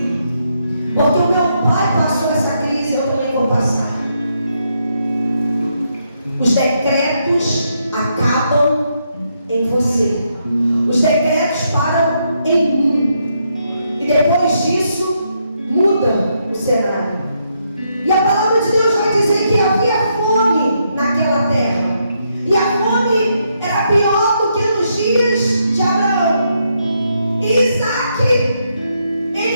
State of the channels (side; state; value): both; inverted; correlation -0.78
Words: Porque o meu pai passou essa crise, eu também vou passar. Os decretos acabam em você. Os decretos param em mim. E depois disso, muda o cenário. E a palavra de Deus vai dizer que havia fome naquela terra. E a fome era pior do que nos dias de Abraão. E Isaac,